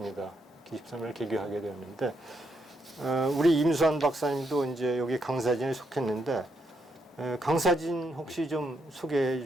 23일 개교하게 되었는데, 우리 임수환 박사님도 이제 여기 강사진에 속했는데, 강사진 혹시 좀 소개해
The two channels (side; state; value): both; normal; correlation 0.78